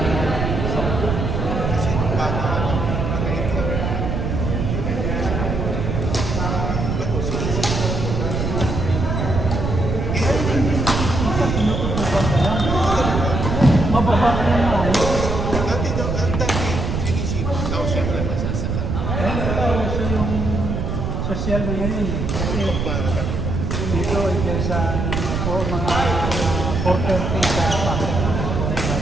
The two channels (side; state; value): right; noise; rumble, 1 dB below the sound